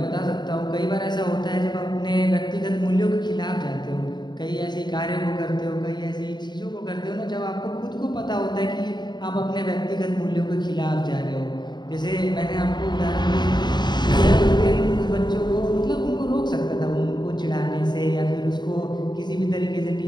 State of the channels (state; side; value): late; right; 0.21 ms